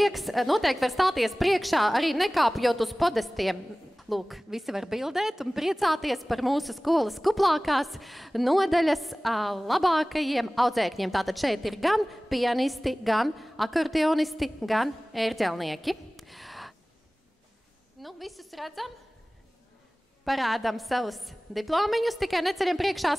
noteikti var stāties priekšā, arī nekāpjot uz podestiem. Lūk, visi var bildēt un priecāties par mūsu skolas kuplākās nodaļas labākajiem audzēkņiem. Tātad šeit ir gan pianisti, gan akordeonisti, gan ērģelnieki. Nu, visus redzam? Parādām savus diplomiņus, tikai neceļam priekšā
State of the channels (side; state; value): both; normal; correlation 0.98